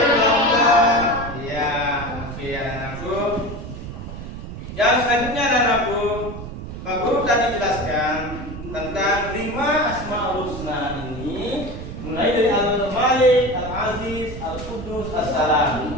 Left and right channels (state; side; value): noise; right; rumble, 9 dB below the sound